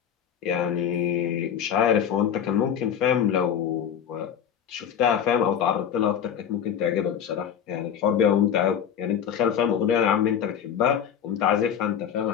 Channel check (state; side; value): quieter; right; 8.6 dB